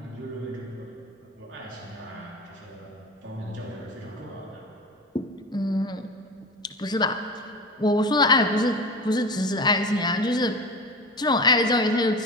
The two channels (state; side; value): normal; both; correlation 0.30